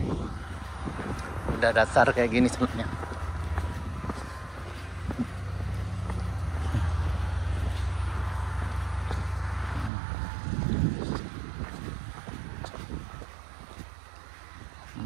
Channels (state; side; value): drops out; left; at 9.9 s